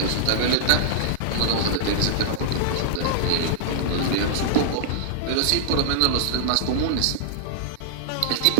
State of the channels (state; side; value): different; both; correlation -0.02